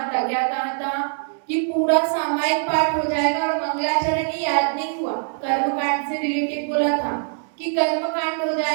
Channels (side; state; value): left; silent; 64 dB below the other